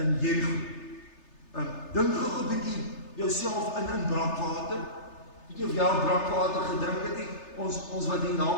Jerigo. Dink gou 'n bietjie jouself in brakwater. Weet jy of jy al brakwater gedrink het nie? Ons wat hier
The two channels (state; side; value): late; right; 3.3 ms